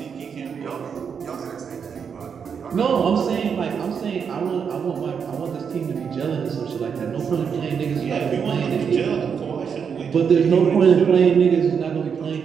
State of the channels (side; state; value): left; quieter; 6.7 dB